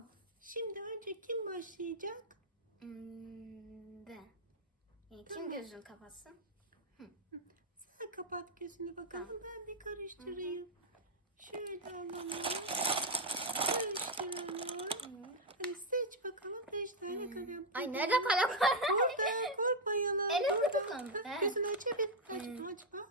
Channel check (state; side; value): normal; both; correlation 0.01